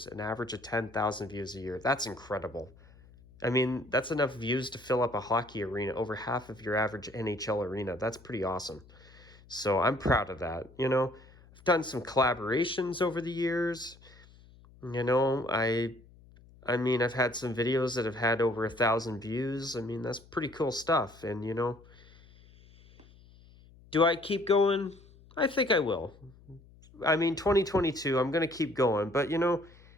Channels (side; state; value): left; noise; hum, 24 dB below the sound